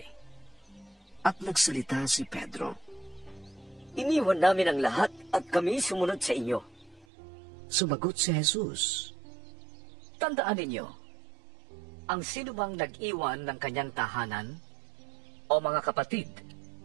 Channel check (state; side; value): drops out; left; at 7.1 s